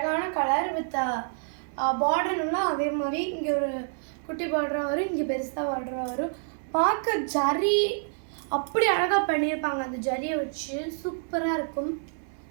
கலர் வித் பார்டர்னா அதே மாதிரி இங்கே ஒரு குட்டி பார்டராக வரும், இங்கே பெருசாக பார்டராக வரும். பார்க்க ஜரி அப்படி அழகாக பண்ணியிருப்பாங்க. அந்த ஜரியை வச்சு சூப்பராக இருக்கும்.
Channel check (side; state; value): left; silent; digital silence